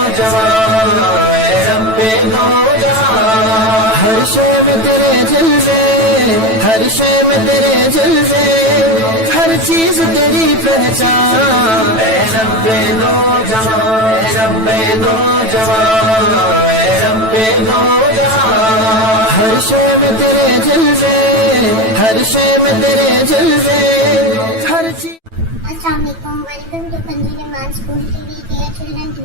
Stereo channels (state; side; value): late; left; 9.1 ms